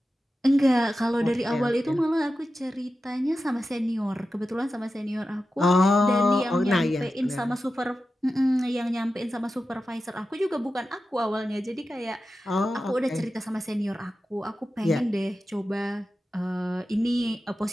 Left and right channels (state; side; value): normal; both; correlation 0.92